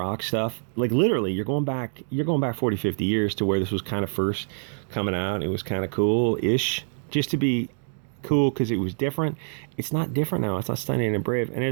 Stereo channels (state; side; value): silent; left; digital silence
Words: stuff. Like literally, you're going back 40, 50 years to where this was kind of first coming out. It was kind of cool-ish, just to be cool because it was different. It's not different now. It's not Stunning and Brave. And